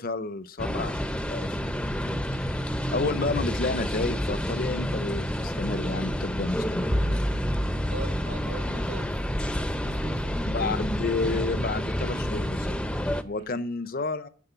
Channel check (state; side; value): normal; both; correlation 0.66